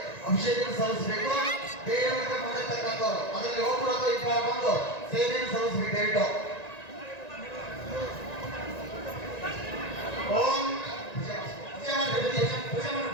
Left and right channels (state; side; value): late; right; 1.9 ms